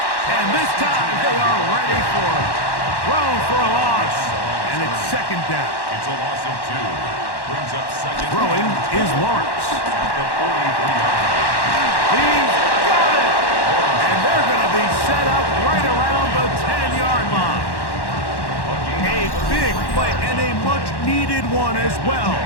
And this time they are ready for it. Thrown for a loss. And it's second down. It's a loss of 2. Brings up second. Throwing is Lawrence. At the 43-yard line. He's got it. And they're going to be set up right around the 10-yard line. A big play and a much-needed one as well.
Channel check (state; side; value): late; right; 1.1 ms